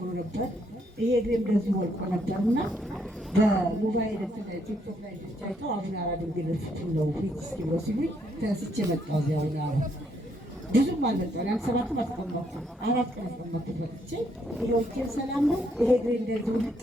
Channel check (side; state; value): both; normal; correlation 0.73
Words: ነበር። ይሄ እግሬ እንደዚህ ወልቆ ነበርና በሞባይል ቲክቶክ ላይ አይተው አቡነ አራ ድንግል ፍቱን ነው ፊት እስኪ ብሎ ሲሉኝ ተነስቼ መጣሁ። እዚያ አቡነ አራ ብዙም አልመጣሁ። ያን 7 አስቀመጥኩ 4 ቀን አስቀመጥኩ። መጥቼ ይሄው እጄ ሰላም ነው። ይሄ እግሬ እንደዚህ ውልቅ